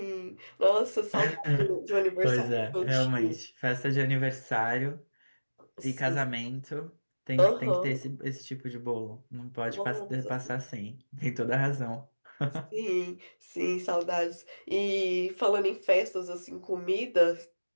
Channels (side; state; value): both; inverted; correlation -1.00